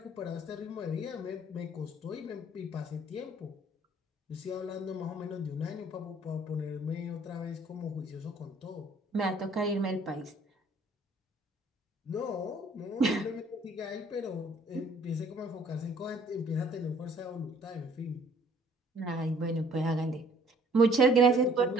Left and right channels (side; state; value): both; normal; correlation 0.58